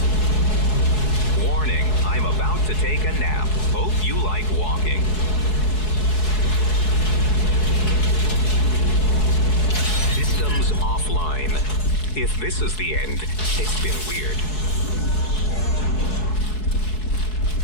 Warning, I'm about to take a nap. Hope you like walking. Systems offline. If this is the end, it's been weird.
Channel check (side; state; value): right; late; 4.7 ms